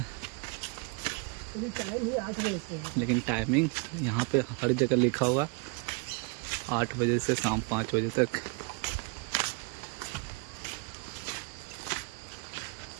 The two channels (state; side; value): quieter; left; 31.2 dB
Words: लेकिन टाइमिंग यहाँ पे हर जगह लिखा हुआ 8 बजे से शाम 5 बजे तक।